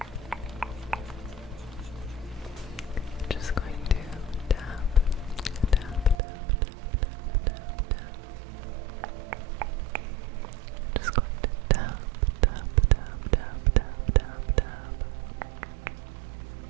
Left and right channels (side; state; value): left; drops out; at 6.2 s